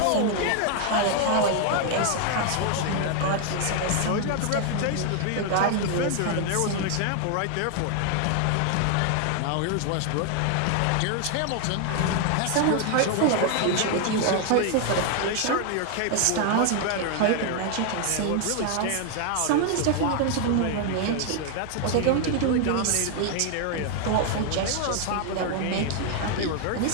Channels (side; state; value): both; different; correlation 0.00